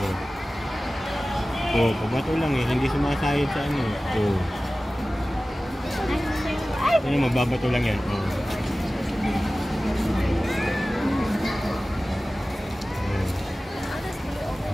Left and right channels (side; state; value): both; normal; correlation 0.96